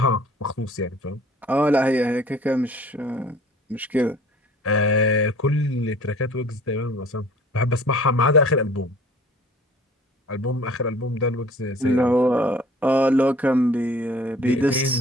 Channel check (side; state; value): both; normal; correlation 0.50